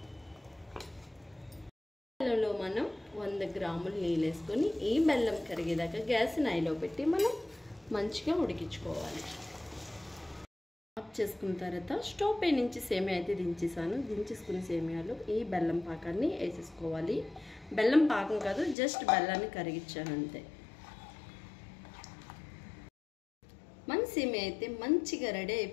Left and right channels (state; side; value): drops out; right; at 18.8 s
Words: బెల్లంలో మనం 100 గ్రాములు నీళ్ళు వేసుకొని ఈ బెల్లం కరిగేదాకా గ్యాస్ని హైలో పెట్టి మనం మంచిగా ఉడికించుకోవాలి. ఆఫ్ చేసుకున్న తర్వాత స్టవ్ పై నుంచి సేమియా అయితే దించేసుకున్న సేమియాలు ఈ బెల్లం పాకాన్ని వేసేసుకోవాలి. బెల్లం పాకం కాదు, జస్ట్ బెల్లాన్ని కరిగించాను అంతే. మన సేమియా అయితే మంచిగా రెడీ